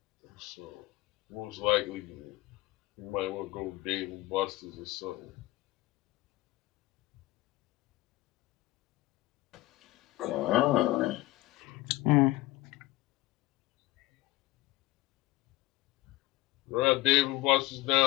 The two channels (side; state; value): right; quieter; 18.7 dB